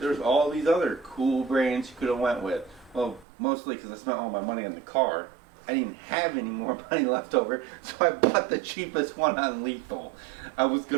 There's all these other cool brands you could have went with. Well, mostly because I spent all my money on the car. I didn't have any more money left over, so I bought the cheapest one on Lethal. I was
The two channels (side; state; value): left; drops out; at 3.2 s